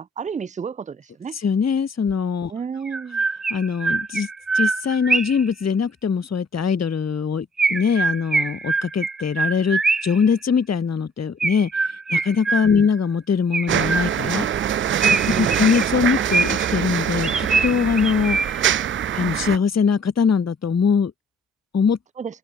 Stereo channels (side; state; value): both; normal; correlation 0.58